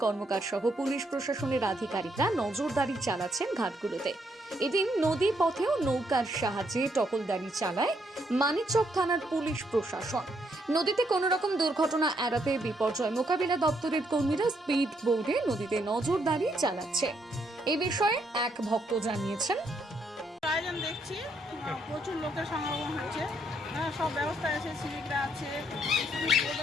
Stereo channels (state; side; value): normal; both; correlation 0.74